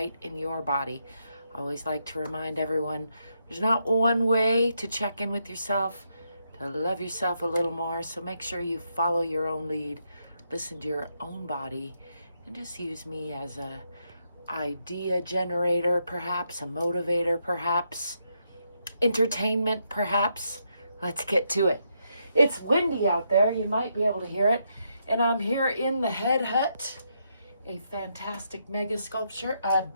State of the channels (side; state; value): both; inverted; correlation -0.79